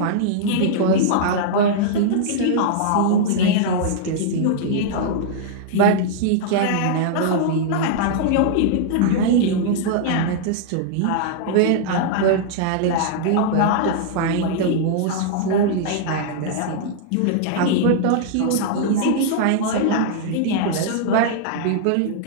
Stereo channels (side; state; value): both; different; correlation -0.01